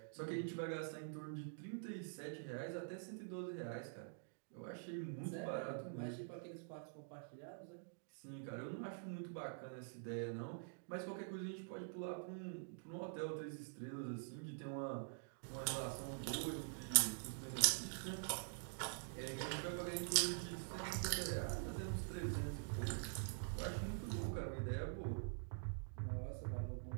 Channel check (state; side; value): silent; left; digital silence